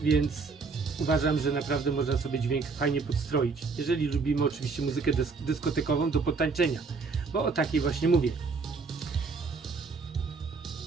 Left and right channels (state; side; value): quieter; left; 4.5 dB